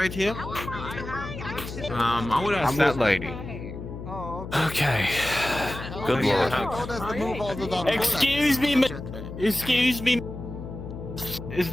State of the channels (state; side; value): noise; left; hum, 10 dB below the sound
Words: here? I would ask that lady. Okay. Good lord. Excuse me, excuse me. Is